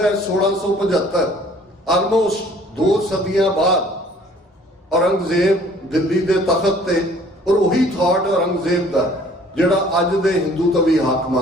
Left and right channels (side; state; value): both; normal; correlation 0.55